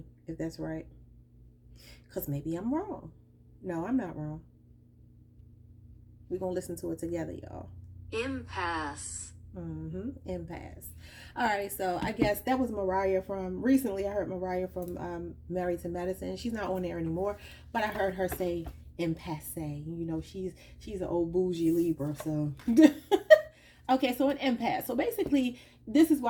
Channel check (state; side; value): identical; both; correlation 1.00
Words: if that's right. Because maybe I'm wrong. No, I'm not wrong. We're going to listen to it together, y'all. Impasse. Impasse. All right, so I guess that was Mariah from recently. I heard Mariah from Married to Medicine. She's not on there anymore, but I heard her say impasse. You know, she's an old bougie Libra, so okay, so an impasse. So basically, this is